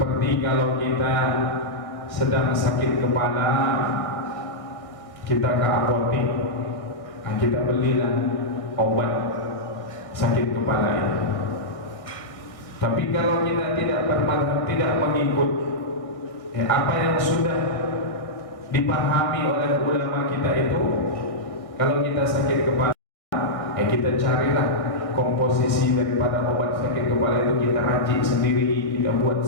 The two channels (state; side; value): late; right; 1.6 ms